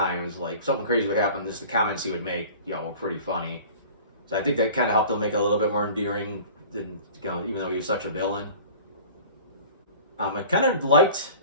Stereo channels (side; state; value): both; inverted; correlation -0.43